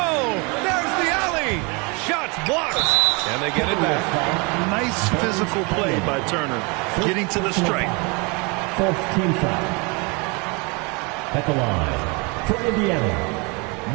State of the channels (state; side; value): quieter; left; 30.1 dB